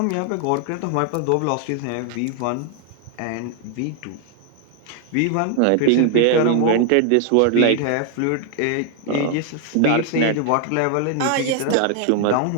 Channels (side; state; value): both; different; correlation 0.00